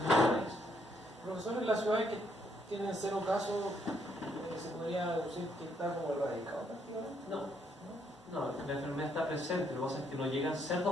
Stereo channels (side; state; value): both; normal; correlation 0.72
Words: país. Profesor, en las ciudades que tienen 0 casos, ¿se podría decir que está como erradicado prácticamente? No, la enfermedad está presente, lo que pasa es que no llegan